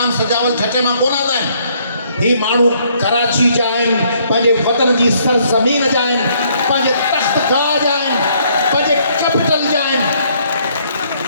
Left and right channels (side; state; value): both; inverted; correlation -0.67